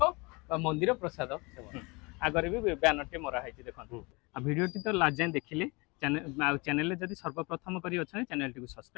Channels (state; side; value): quieter; right; 27.2 dB